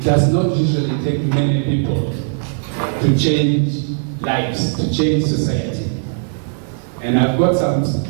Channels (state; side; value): silent; left; digital silence